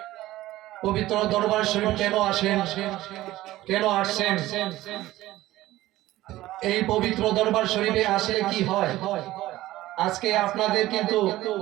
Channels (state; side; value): quieter; left; 16.1 dB